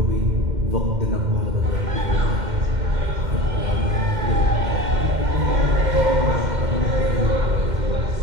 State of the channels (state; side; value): late; left; 2.1 ms